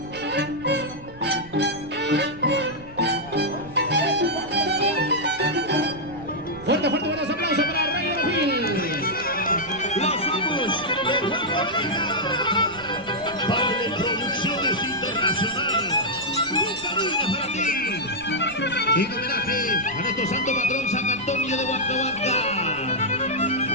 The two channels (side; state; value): right; noise; rumble, 20 dB below the sound